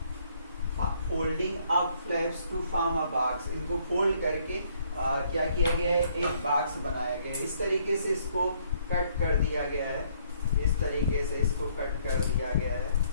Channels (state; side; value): inverted; both; correlation -0.66